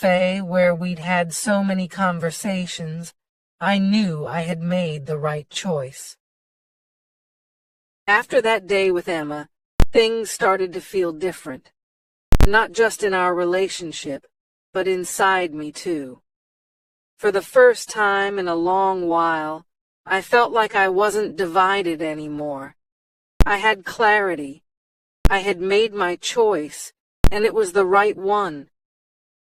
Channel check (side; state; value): both; identical; correlation 1.00